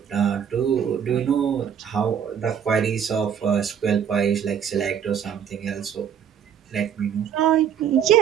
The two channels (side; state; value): left; quieter; 8.4 dB